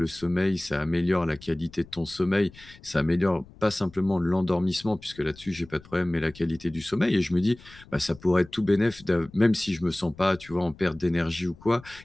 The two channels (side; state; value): left; noise; rumble, 22 dB below the sound